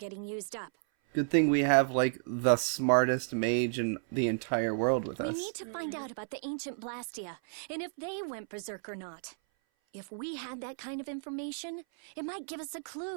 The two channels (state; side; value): silent; left; 56 dB below the other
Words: used up. Good thing we have, like, the smartest mage in the entire world with We us. need to find out about the ancient Blastia, and if they went berserk or not. If we had that kind of information, it might give us a